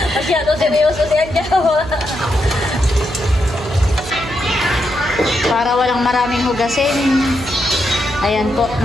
Masyado seryoso si Adjaw. Para walang maraming hugasin. Ayan po,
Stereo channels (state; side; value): noise; right; hum, 12 dB below the sound